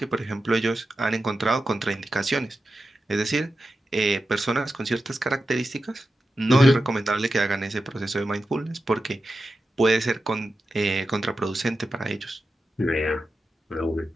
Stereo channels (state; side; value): normal; both; correlation 0.91